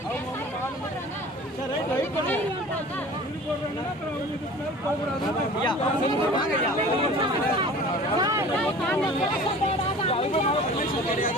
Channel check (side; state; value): both; normal; correlation 0.42